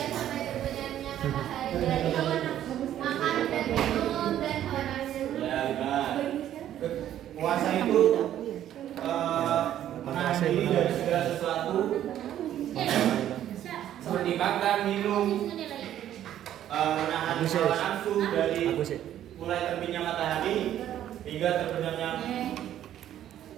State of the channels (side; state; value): left; quieter; 11.5 dB